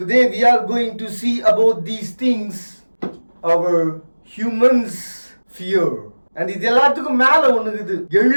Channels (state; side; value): inverted; both; correlation -1.00